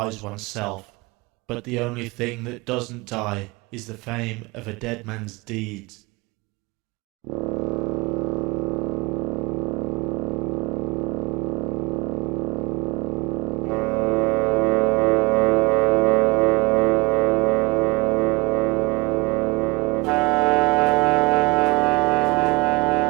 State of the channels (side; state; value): left; quieter; 26.0 dB